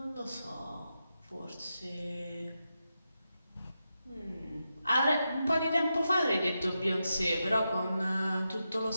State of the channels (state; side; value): inverted; both; correlation -0.88